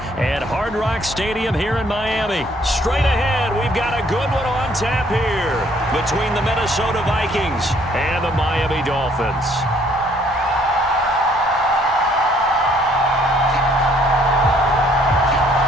at Hard Rock Stadium here in Miami. Straight ahead, we've got a good one on tap here between the Minnesota Vikings and the Miami Dolphins.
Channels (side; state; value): both; normal; correlation 0.63